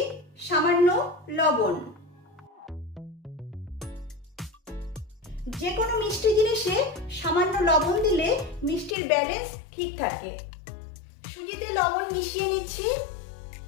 সামান্য লবণ। যে কোনো মিষ্টি জিনিসে সামান্য লবণ দিলে মিষ্টির ব্যালেন্স ঠিক থাকে। সুজিতে লবণ মিশিয়ে নিচ্ছি।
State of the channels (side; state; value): right; drops out; at 9.0 s